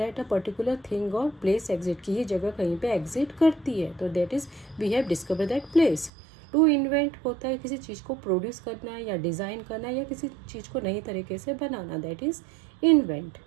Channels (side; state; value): left; drops out; at 6.1 s